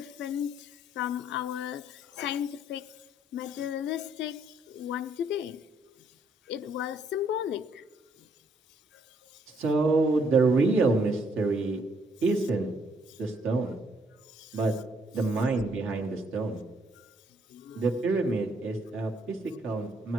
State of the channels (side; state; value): both; normal; correlation 0.69